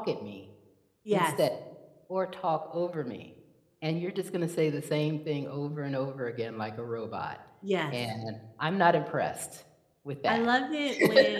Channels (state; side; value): identical; both; correlation 1.00